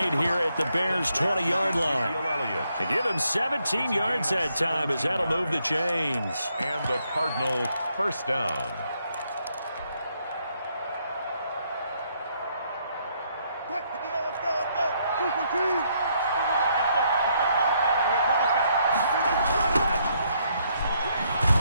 here at the Bears' 20-yard line. To give him 17 yards that time as that'll move the chains. And the Cardinal first down.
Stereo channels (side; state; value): both; inverted; correlation -0.73